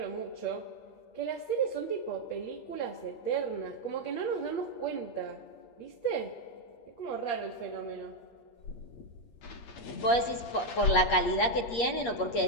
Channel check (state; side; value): late; right; 8.5 ms